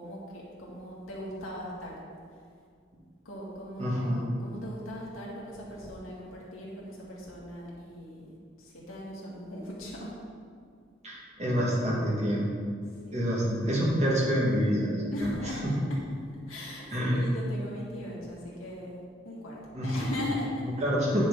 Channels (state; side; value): normal; both; correlation 0.71